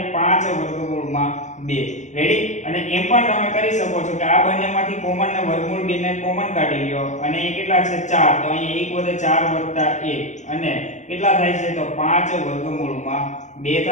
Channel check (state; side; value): late; right; 0.35 ms